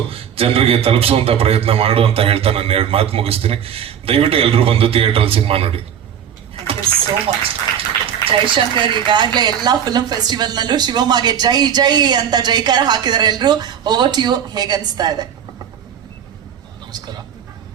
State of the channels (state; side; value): quieter; left; 8.8 dB